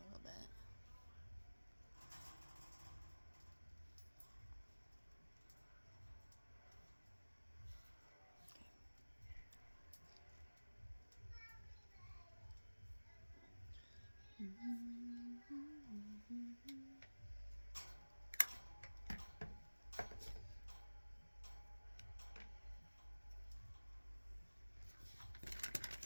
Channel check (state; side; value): inverted; both; correlation -1.00